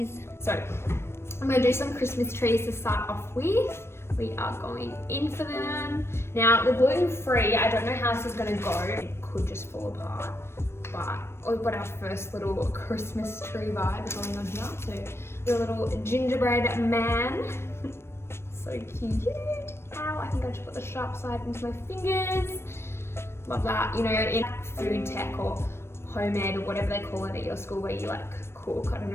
So I'm gonna do some Christmas trees to start off with. we are going in for them. Now the gluten-free, I don't know how this is gonna go. It could just fall apart, but we've got our first little Christmas tree vibe going on here. So the little gingerbread man. So cute. Ow, I think I should put the sharp side into my fingers. Love that. You know, in food tech or home ed or whatever they call it at your school where you like cook. I don't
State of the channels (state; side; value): late; right; 0.12 ms